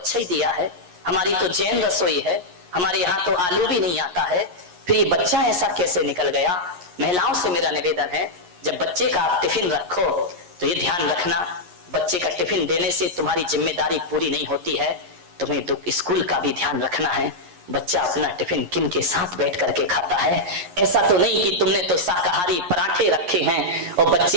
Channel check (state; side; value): late; left; 11 ms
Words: ही दिया है, हमारी तो जैन रसोई है, हमारे यहाँ तो आलू भी नहीं आता है, फिर ये बच्चा ऐसा कैसे निकल गया? महिलाओं से मेरा निवेदन है, जब बच्चे का आप टिफिन रखो तो ये ध्यान रखना, बच्चे का टिफिन देने से तुम्हारी जिम्मेदारी पूरी नहीं होती है, तुम्हें तो स्कूल का भी ध्यान रखना है। बच्चा अपना टिफिन किन के साथ बैठ करके खाता है? ऐसा तो नहीं कि तुमने तो शाकाहारी पराठे रखे हैं और